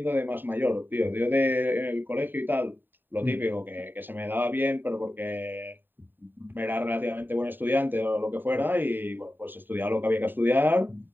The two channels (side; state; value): left; late; 0.093 ms